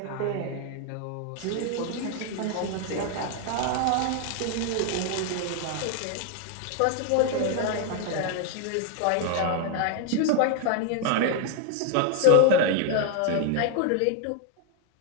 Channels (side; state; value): both; different; correlation 0.00